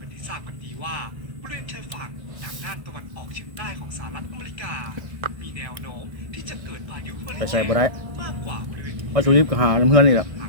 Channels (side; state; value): left; late; 1.6 ms